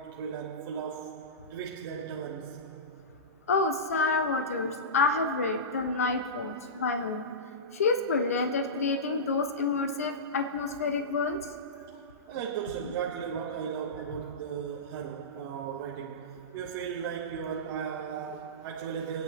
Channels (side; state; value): both; normal; correlation -0.19